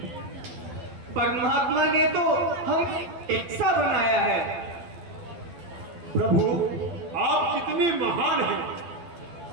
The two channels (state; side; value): late; left; 12 ms